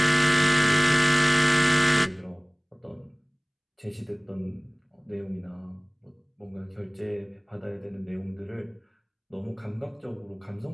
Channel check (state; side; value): identical; both; correlation 1.00